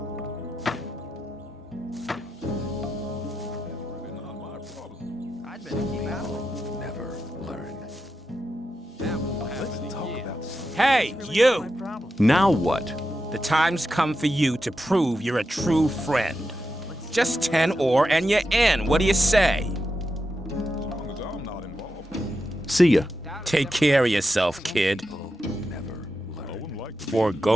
I'd better keep out of it. Never learn. That won't happen Let's talk about Hey, you! Now what? The time's come for you to prove you're a true friend. Just 10 ore and you're in. What do you say? long as I'm not involved. See ya. Take care of yourself, kid. Never learn. For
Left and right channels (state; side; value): normal; both; correlation 0.88